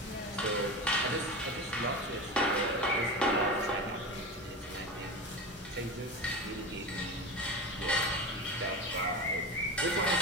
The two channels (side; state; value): both; normal; correlation 0.25